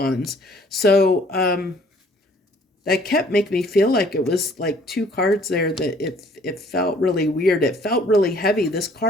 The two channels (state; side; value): normal; both; correlation 0.58